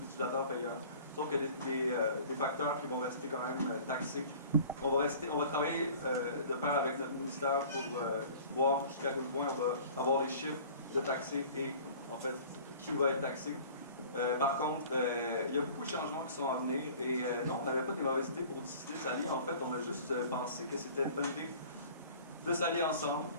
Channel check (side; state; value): both; inverted; correlation -0.46